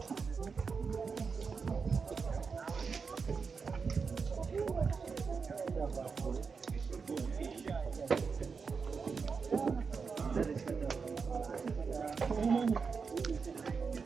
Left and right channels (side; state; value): left; quieter; 5.3 dB